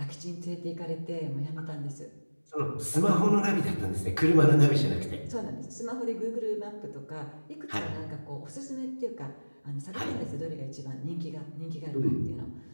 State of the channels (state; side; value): inverted; both; correlation -1.00